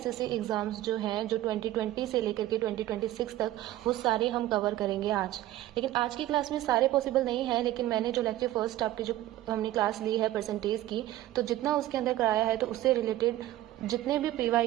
एग्जाम्स जो हैं जो 2020 से लेकर के 2026 तक वो सारे हम कवर करेंगे आज। लेकिन आज की क्लास में सारे पॉसिबल नहीं है, लेकिन मैंने जो लेक्चर फर्स्ट आपकी जो हमने क्लास ली है परसेंटेज की, तो जितना उसके अंदर कराया है तो उससे रिलेटेड जितने भी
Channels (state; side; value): quieter; left; 14.8 dB